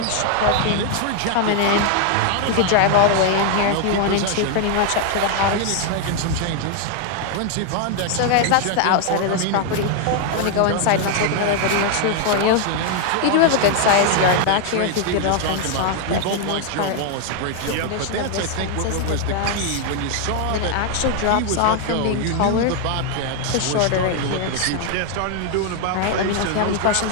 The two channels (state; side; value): different; both; correlation 0.00